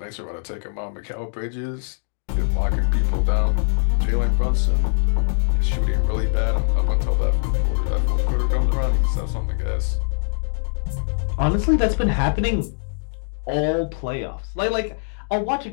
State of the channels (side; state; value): right; silent; digital silence